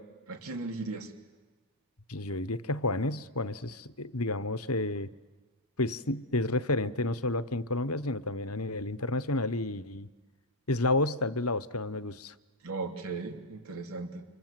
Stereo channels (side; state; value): both; normal; correlation 0.01